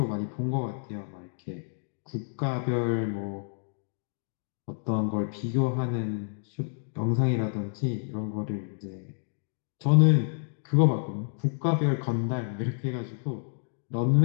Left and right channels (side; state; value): right; silent; digital silence